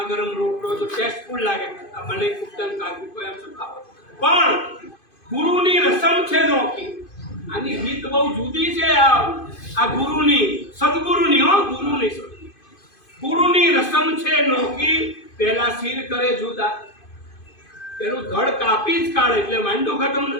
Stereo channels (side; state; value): right; late; 2.5 ms